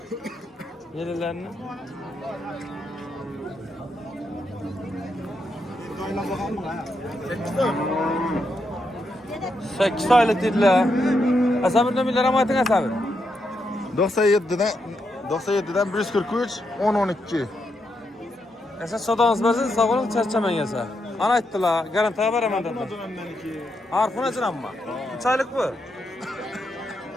Yellarni. Sekiz aylık dediler. Asabir nömerleri ama ayting Asabir. 97'den 143 10-12. Esa sodağınız bazı sağolun çarçaman yasa. Ana ayttılar, garantiya beraman dediler. Harfın açın amma. 3 aylık bu.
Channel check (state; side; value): normal; both; correlation 0.82